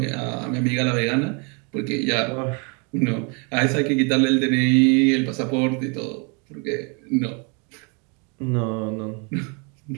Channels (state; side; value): quieter; left; 34.1 dB